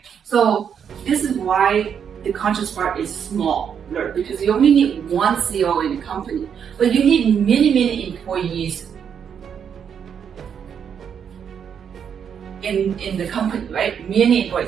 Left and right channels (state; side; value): quieter; left; 7.7 dB